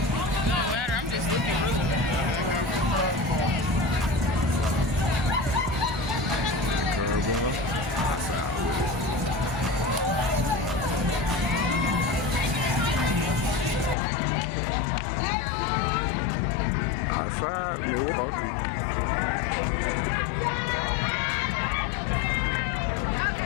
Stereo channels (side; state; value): right; drops out; at 14.0 s